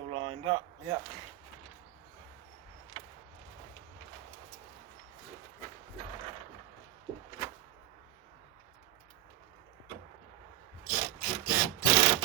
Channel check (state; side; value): quieter; left; 14.0 dB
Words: lined up. Yeah.